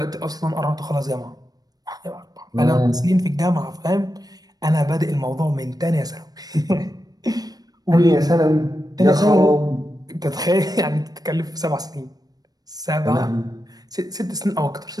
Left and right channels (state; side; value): late; left; 0.19 ms